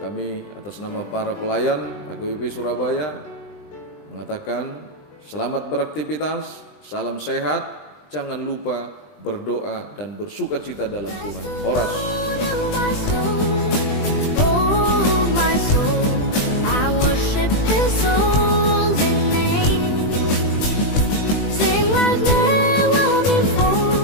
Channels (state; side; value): late; right; 20 ms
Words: atas nama para pelayan HKBP Surabaya mengatakan selamat beraktivitas, salam sehat, jangan lupa berdoa dan bersukacita dalam Tuhan. Horas.